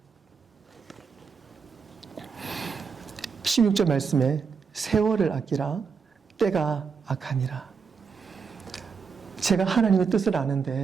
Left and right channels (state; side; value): quieter; left; 5.8 dB